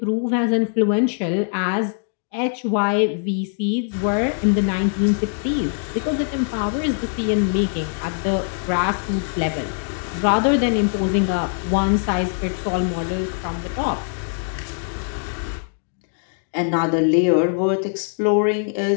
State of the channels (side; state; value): right; silent; digital silence